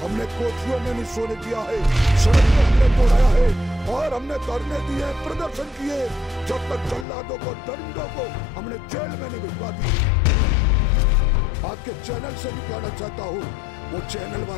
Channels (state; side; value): drops out; right; at 7.1 s